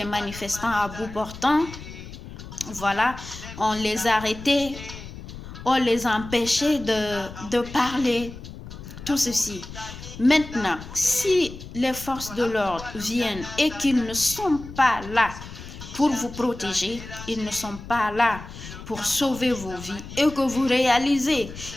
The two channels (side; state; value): left; noise; rumble, 13 dB below the sound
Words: manifestants à bout portant. Voilà, on les arrêtait, on les empêchait de parler, tout ceci. Maintenant, si les forces de l'ordre viennent et qu'ils ne sont pas là pour vous protéger, ils ne sont pas là pour sauver vos vies et que vous réalisez